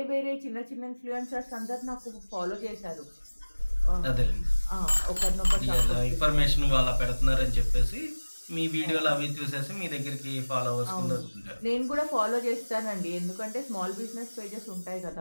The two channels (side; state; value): both; inverted; correlation -1.00